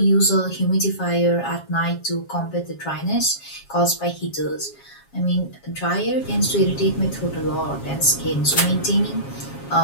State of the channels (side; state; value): right; late; 7.3 ms